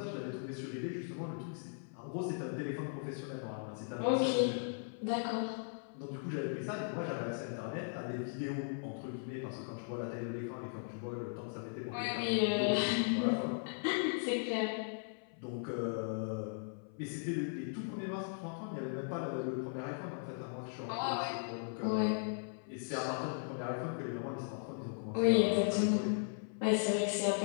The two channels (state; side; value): silent; right; 53 dB below the other